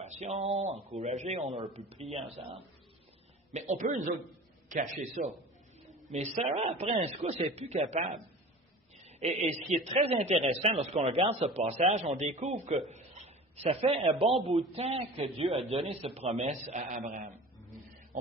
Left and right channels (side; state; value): both; normal; correlation 0.38